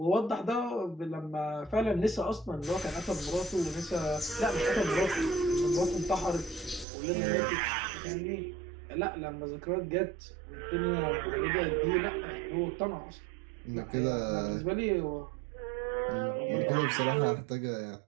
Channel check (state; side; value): drops out; left; at 6.9 s